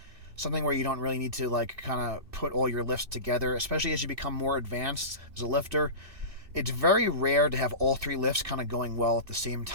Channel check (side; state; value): left; late; 2.6 ms